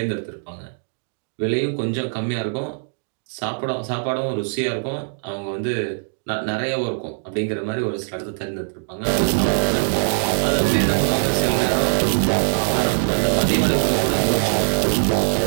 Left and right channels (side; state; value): left; silent; digital silence